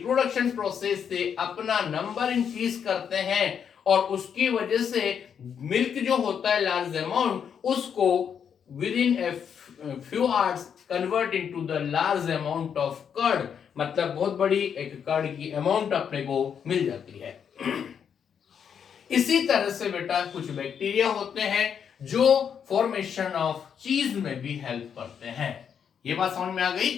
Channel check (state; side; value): quieter; right; 7.6 dB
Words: प्रोसेस से अपना नंबर इंक्रीज करते हैं, और उसकी वजह से मिल्क जो होता है लार्ज अमाउंट, उसको within a few hours convert into the large amount of curd, मतलब बहुत बड़ी एक कर्ड की अमाउंट अपने को मिल जाती है। इसी तरह से बेटा कुछ बैक्टीरिया होते हैं जो फॉर्मेशन ऑफ चीज में भी हेल्प करते हैं। ये बात समझ में आ गई।